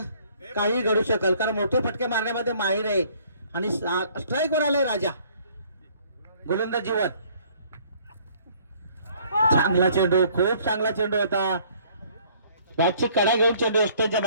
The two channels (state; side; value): inverted; both; correlation -0.59